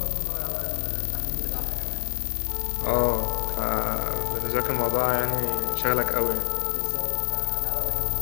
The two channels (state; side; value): silent; right; digital silence